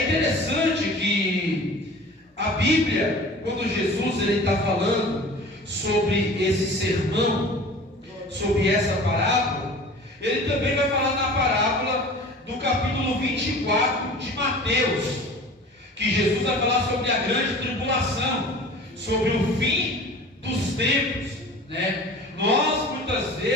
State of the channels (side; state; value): both; normal; correlation 0.41